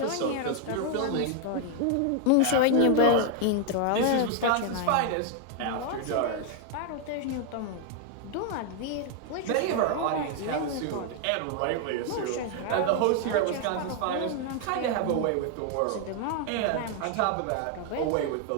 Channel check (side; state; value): both; different; correlation 0.00